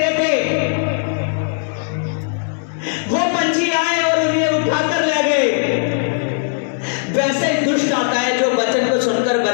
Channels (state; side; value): silent; right; 67 dB below the other